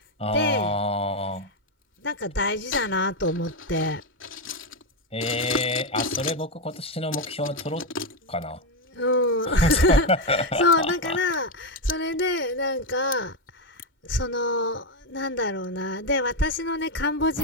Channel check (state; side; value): normal; both; correlation 0.07